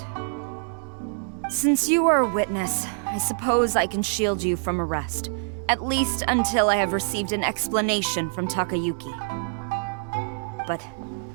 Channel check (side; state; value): left; silent; digital silence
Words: Since you are a witness, I suppose I can shield you from arrest. At least until I have received an explanation from Takayuki. But